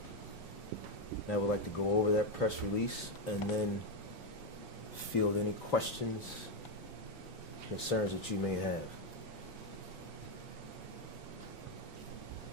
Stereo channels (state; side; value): normal; both; correlation 0.04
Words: And I would like to go over that press release and then field any questions, concerns that you may have.